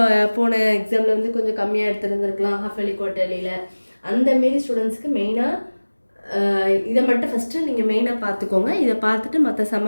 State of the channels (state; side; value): inverted; both; correlation -1.00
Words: போன எக்ஸாமில் வந்து கொஞ்சம் கம்மியாக எடுத்துருந்துருக்கலாம் ஹாஃப் இயர்லி குவார்ட்டர்லியில். அந்தமாரி ஸ்டூடெண்ட்ஸ்க்கு மெயினாக இதை மட்டும் ஃபஸ்ட்டு நீங்கள் மெயினாக பார்த்துக்கோங்க. இதை பார்த்துட்டு மற்ற